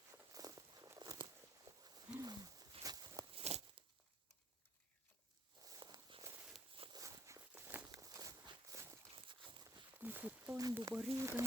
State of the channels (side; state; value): both; normal; correlation 0.64